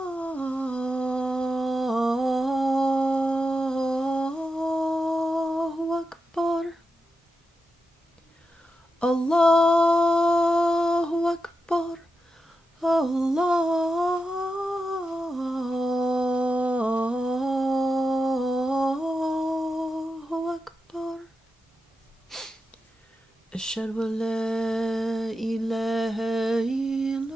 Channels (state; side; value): normal; both; correlation 0.89